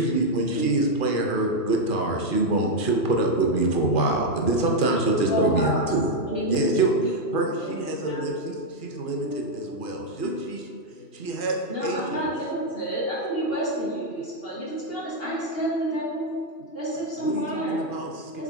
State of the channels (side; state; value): right; late; 2.4 ms